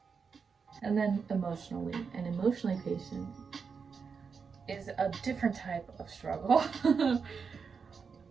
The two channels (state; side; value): quieter; left; 5.7 dB